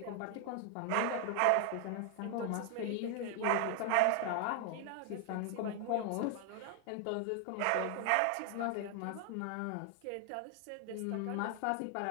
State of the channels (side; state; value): both; different; correlation 0.00